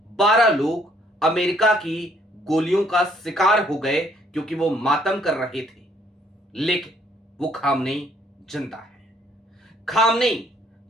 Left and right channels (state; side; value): normal; both; correlation 0.65